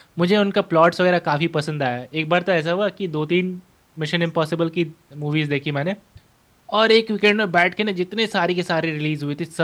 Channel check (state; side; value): identical; both; correlation 1.00